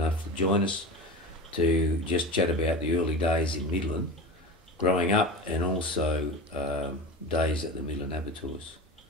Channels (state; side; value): normal; both; correlation 0.29